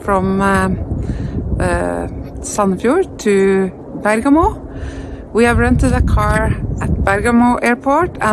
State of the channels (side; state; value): both; identical; correlation 1.00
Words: Sandefjord to Bergamo. We have rented a car at Bergamo airport